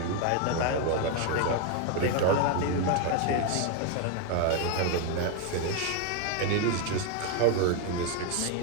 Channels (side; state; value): both; different; correlation 0.01